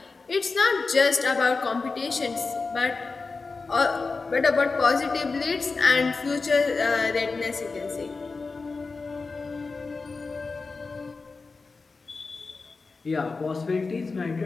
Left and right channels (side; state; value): right; quieter; 4.1 dB